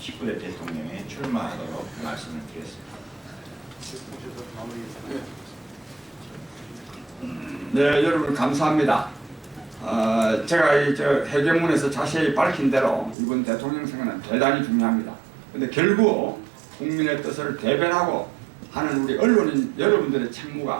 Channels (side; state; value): left; drops out; at 13.2 s